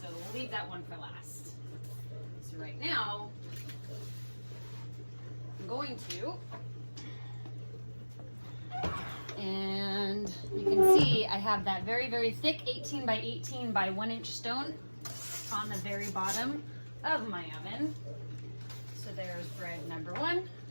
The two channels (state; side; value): inverted; both; correlation -1.00